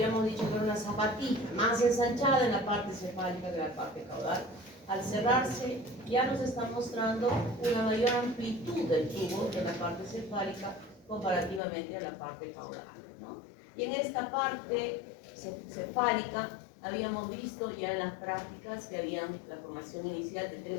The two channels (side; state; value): right; drops out; at 11.6 s